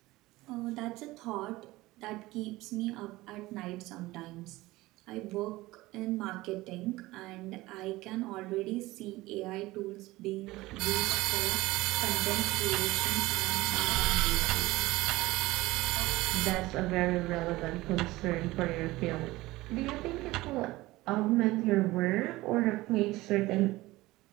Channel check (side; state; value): left; quieter; 19.0 dB